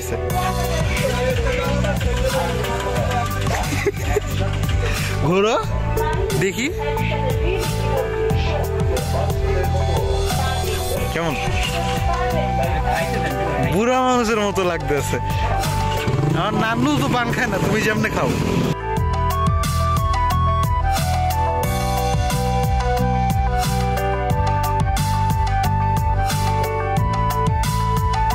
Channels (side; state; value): both; identical; correlation 1.00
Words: ঘোরো দেখি কেমন, বুড়া মানুষের মতো লাগতেছে। আমার নানু তো পান খায় না, তুমি যেমনে খাও।